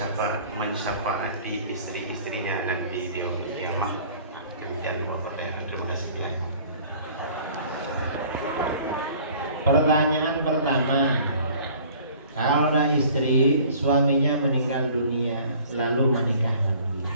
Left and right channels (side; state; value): both; inverted; correlation -0.51